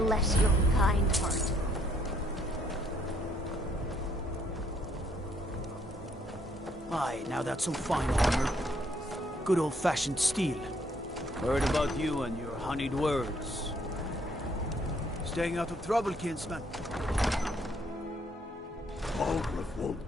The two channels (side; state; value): both; normal; correlation 0.68